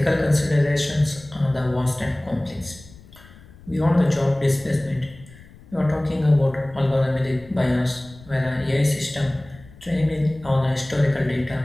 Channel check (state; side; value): noise; left; rumble, 22 dB below the sound